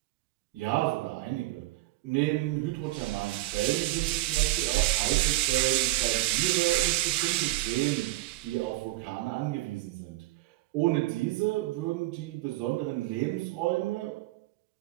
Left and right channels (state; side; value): quieter; left; 18.1 dB